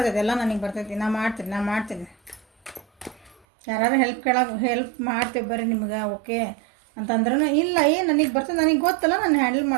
ಎಲ್ಲ ನನಗೆ ಬರ್ತೈತಿ, ನಾ ಮಾಡ್ತೀನಿ. ಯಾರು ಹೆಲ್ಪ್ ಮಾಡ್ತೇವೆ ಬರ್ರಿ ನಿಮ್ಗೆ ಓಕೆ ಅಂತಂದ್ರೂ ಇಲ್ಲ, ನನಗೆ ಬರ್ತದೆ, ನನಗೆ ಗೊತ್ತಲ್ಲ, ನಾನು ಹ್ಯಾಂಡಲ್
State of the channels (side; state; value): left; drops out; at 3.4 s